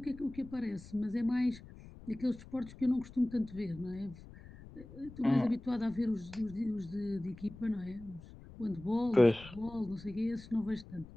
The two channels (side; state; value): left; noise; rumble, 17 dB below the sound